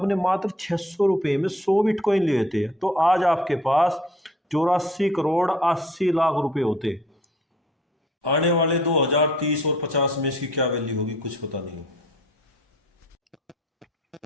मात्र 600 रुपए में 100 बिटकॉइन लिए थे तो आज आपके पास 84,80,00,000 रुपए होते। आने वाले 2030 और 50 में इसकी क्या वैल्यू होगी कुछ पता नहीं।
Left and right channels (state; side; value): normal; both; correlation 0.56